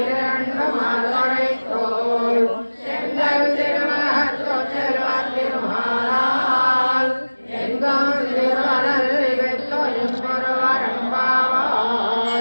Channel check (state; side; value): inverted; both; correlation -1.00